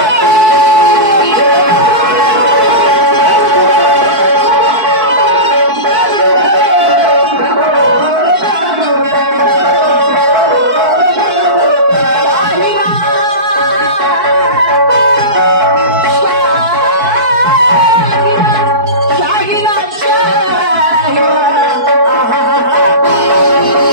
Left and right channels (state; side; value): late; left; 4.6 ms